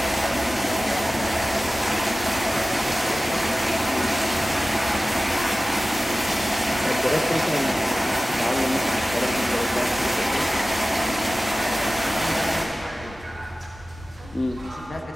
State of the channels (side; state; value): both; normal; correlation 0.96